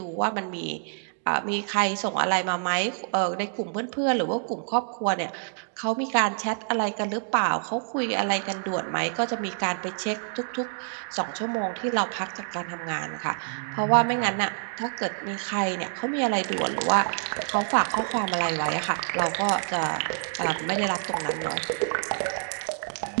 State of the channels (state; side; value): silent; left; digital silence